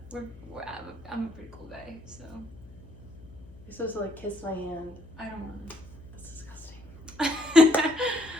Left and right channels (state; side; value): noise; left; hum, 19 dB below the sound